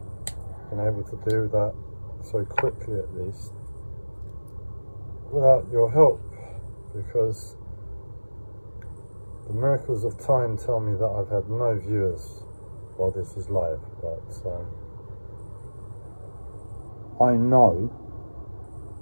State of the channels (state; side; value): inverted; both; correlation -1.00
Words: been able to do that so quickly at least, without your help, because the miracles of time tell me that I've had no viewers while this is live, but I know